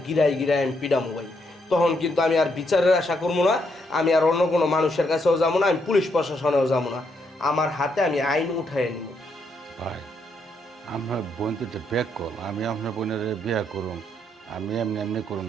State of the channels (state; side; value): normal; both; correlation 0.76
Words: গিরায় গিরায় আমি পিডামো ভাই। তখন কিন্তু আমি আর বিচারের আশা করবো না, আমি আর অন্য কোনো মানুষের কাছেও যাবো না, আমি পুলিশ প্রশাসনেও যাবো না। আমার হাতে আমি আইন উঠাই নিব। ভাই, আমার বোন তো ব্যাক কল, আমি আপনার বোনের বিয়ে করুন, আমি এমনি এমনি করুন